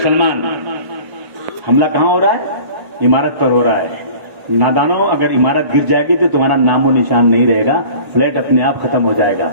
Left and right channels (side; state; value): left; late; 1.1 ms